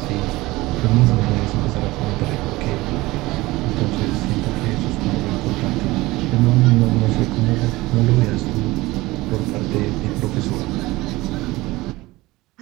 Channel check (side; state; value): left; quieter; 19.9 dB